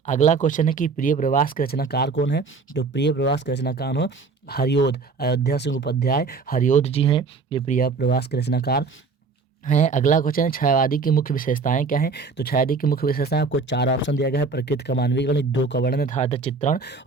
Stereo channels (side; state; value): left; quieter; 4.5 dB